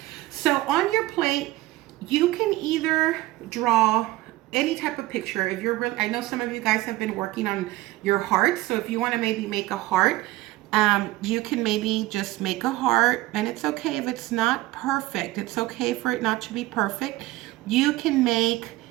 So on your plate, you can either draw any type of picture. If you're I know some of you guys have been working on your heart, so if you want to maybe make a heart, you can maybe just make a heart, and it's okay if it's not perfect. It's okay for it not to be perfect. You can make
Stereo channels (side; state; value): left; quieter; 18.0 dB